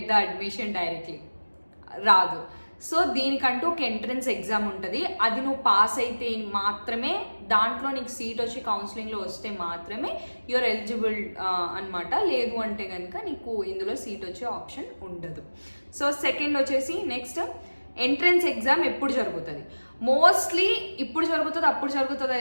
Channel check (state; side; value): inverted; both; correlation -1.00